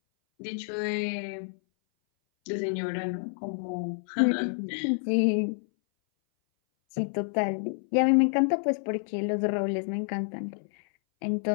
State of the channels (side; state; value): right; silent; 58 dB below the other